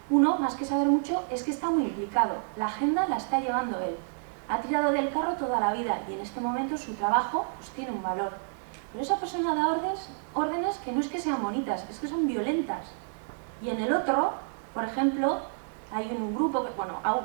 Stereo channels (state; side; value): silent; left; digital silence